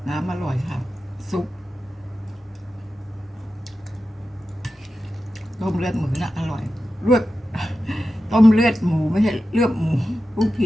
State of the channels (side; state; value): both; normal; correlation 0.92